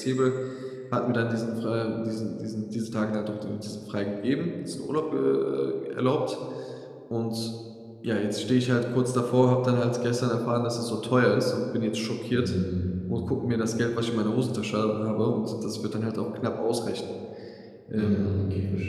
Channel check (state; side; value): identical; both; correlation 1.00